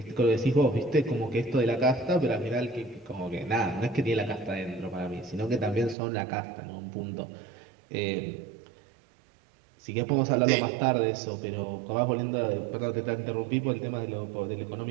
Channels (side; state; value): left; drops out; at 6.0 s